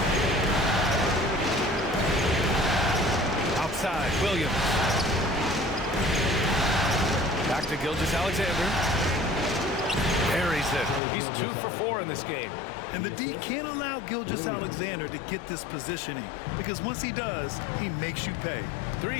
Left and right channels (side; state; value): right; drops out; at 11.0 s